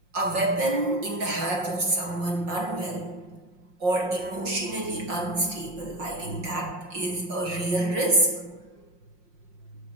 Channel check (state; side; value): late; left; 5.6 ms